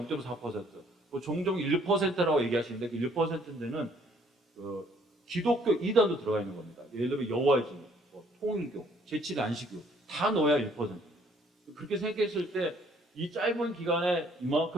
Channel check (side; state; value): both; normal; correlation 0.62